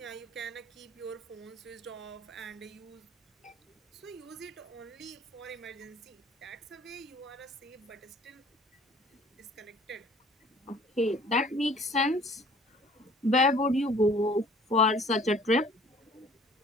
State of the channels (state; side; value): normal; both; correlation 0.53